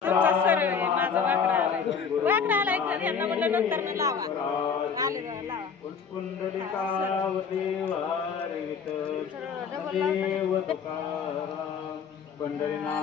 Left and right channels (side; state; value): right; quieter; 6.3 dB